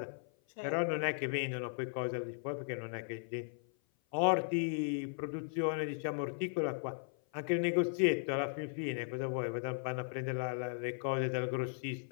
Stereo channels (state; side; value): silent; right; 53 dB below the other